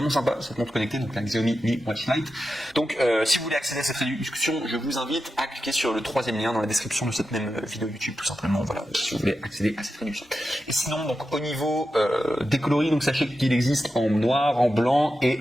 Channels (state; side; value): normal; both; correlation 0.90